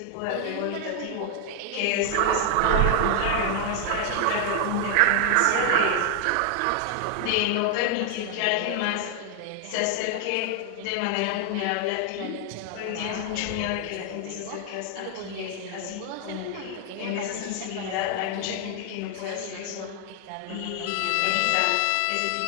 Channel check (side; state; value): both; different; correlation 0.00